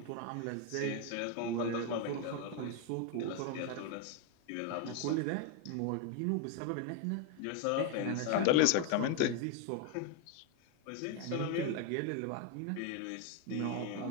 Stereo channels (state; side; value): different; both; correlation 0.01